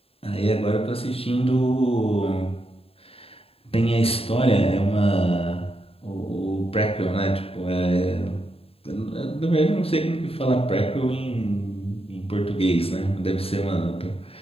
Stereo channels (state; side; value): late; right; 0.28 ms